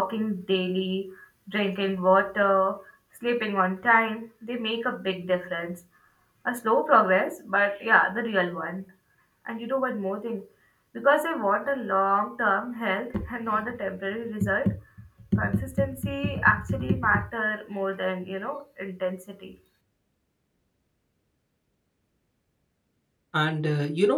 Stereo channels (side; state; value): both; identical; correlation 1.00